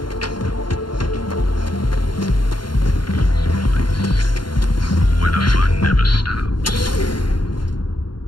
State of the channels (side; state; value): right; late; 0.72 ms